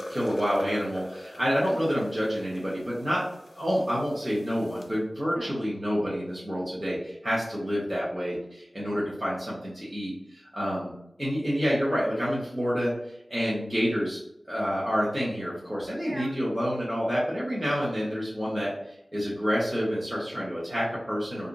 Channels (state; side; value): normal; both; correlation 0.97